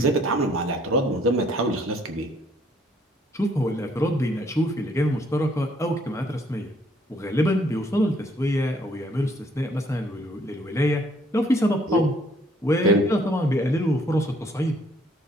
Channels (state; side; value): normal; both; correlation 0.64